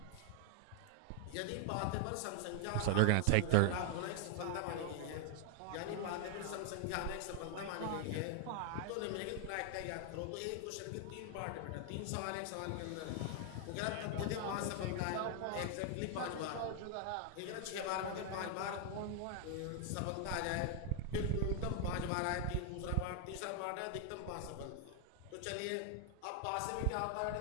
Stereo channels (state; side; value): different; both; correlation 0.00